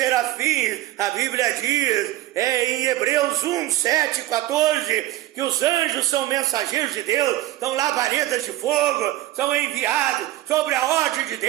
A Bíblia diz em Hebreus 1, 7, 14, que os anjos são mensageiros de Deus, são labaredas de fogo, são enviados sobre a ordem de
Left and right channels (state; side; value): quieter; left; 15.7 dB